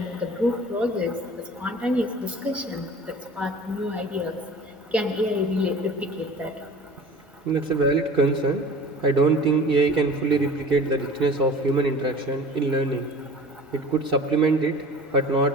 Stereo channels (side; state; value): both; normal; correlation 0.42